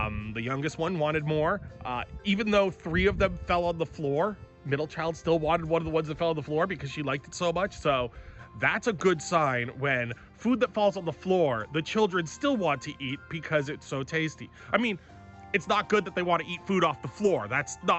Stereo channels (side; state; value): both; identical; correlation 1.00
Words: youngest one wanted more. Even though 3 of them fell on the floor, middle child still wanted one of the ones that fell on the floor because she liked it so much. So that's a good sign when food that falls on the floor, the children still want to eat because it's so tasty. I mean, it's not good that they want to eat food off the floor. That's